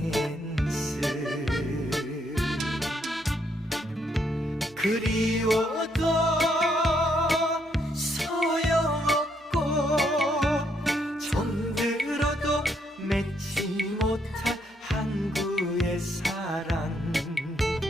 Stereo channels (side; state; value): both; normal; correlation 0.74